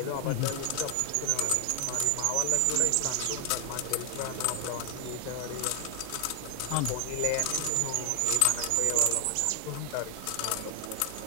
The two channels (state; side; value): different; both; correlation 0.00